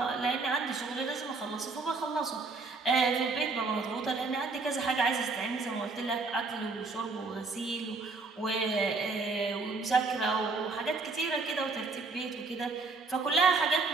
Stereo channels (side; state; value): left; quieter; 3.9 dB